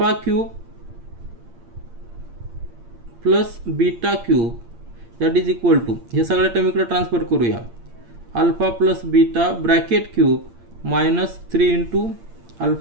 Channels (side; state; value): left; late; 8.7 ms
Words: plus beta cube that is equal to हे सगळ्या term इकडे transfer करूया. Alpha plus beta bracket cube -3 into